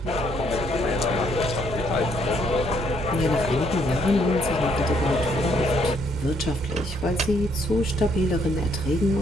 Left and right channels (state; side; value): normal; both; correlation 0.69